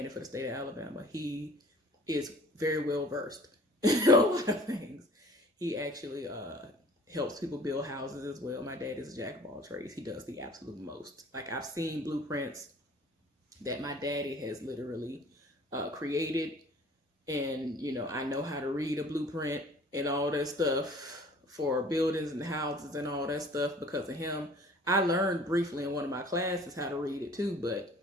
for the state of Alabama. He is very well versed in a lot of things. He actually helps people build houses as well. My dad is a jack of all trades. He does the absolute most. Like, I've seen blueprints that my daddy has literally created, and I know how to read a blueprint and all that stuff for buildings and houses and all that stuff because of him. I learned briefly in one of my classes how to read it too,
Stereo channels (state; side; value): normal; both; correlation 0.50